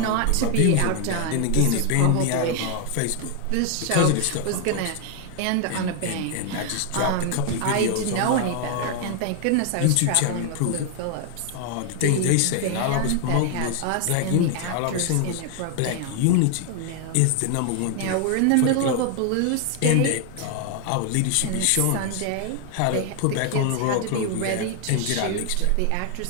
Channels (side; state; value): both; different; correlation 0.00